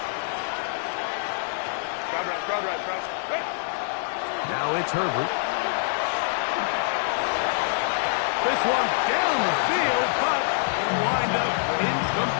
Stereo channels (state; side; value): silent; right; digital silence